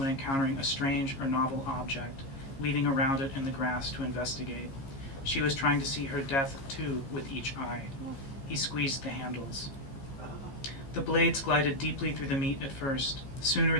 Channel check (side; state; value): right; late; 15 ms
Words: encountering a strange or novel object, weaving around it in the grass to investigate. She was trying to see her death, too, with each eye. He squeezed the handles. The blades glided deeply through the meat at first. Sooner